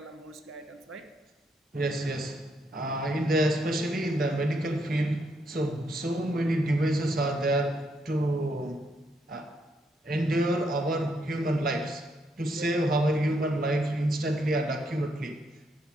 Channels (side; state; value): both; normal; correlation 0.76